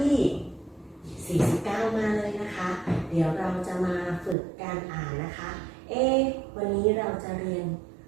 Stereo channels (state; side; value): drops out; left; at 4.4 s